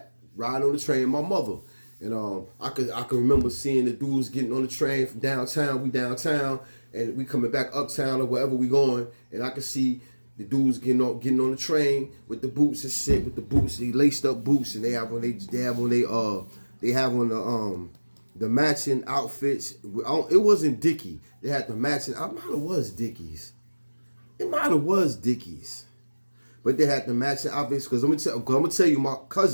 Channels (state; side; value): inverted; both; correlation -1.00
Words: riding on the train with my mother. And I can remember seeing the dudes getting on the train from downtown. We downtown, and we coming back uptown or wherever we going. And I could see the dudes getting on the train with the boots and shit, with the boots, they laced up boots, and they have on the matching outfits. It wasn't Dickie. They had the matching. It might have was Dickies. But they had the matching outfits, because I'm gonna tell you, my